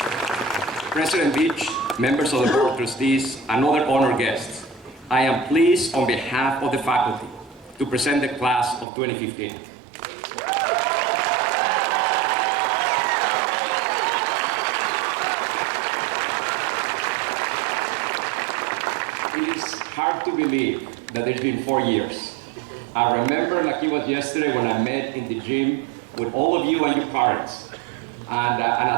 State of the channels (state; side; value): drops out; left; at 8.8 s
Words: President Beach, members of the Board of Trustees, and other honored guests, I am pleased on behalf of the faculty to present the class of 2015. It is hard to believe that it's been 4 years. I remember like it was yesterday when I met in the gym with all of you and your parents. And